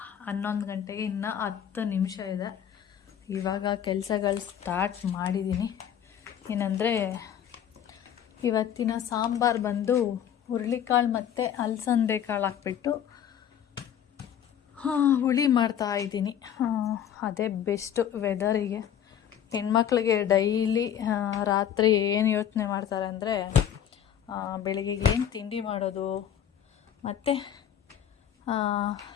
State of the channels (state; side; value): quieter; right; 9.5 dB